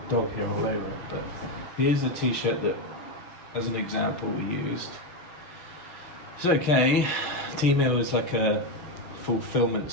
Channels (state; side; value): late; right; 6.5 ms